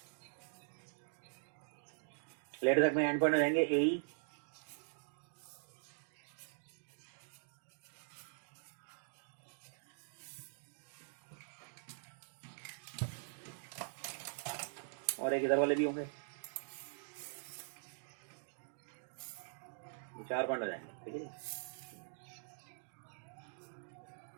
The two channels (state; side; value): silent; left; digital silence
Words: लेटर तक में एंड पॉइंट हो जाएंगे ए और एक इधर वाले भी होंगे, 4 पॉइंट हो जाएंगे, ठीक है।